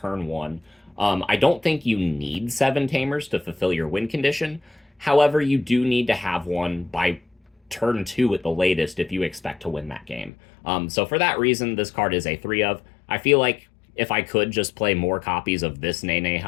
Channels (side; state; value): right; drops out; at 10.3 s